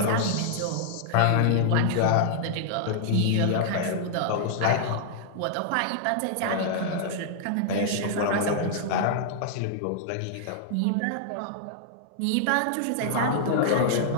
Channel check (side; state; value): both; different; correlation -0.01